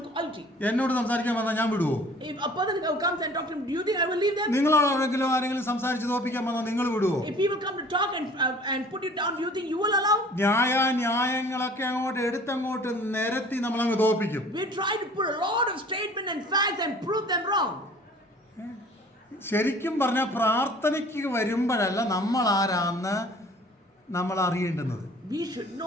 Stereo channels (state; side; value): normal; both; correlation 0.49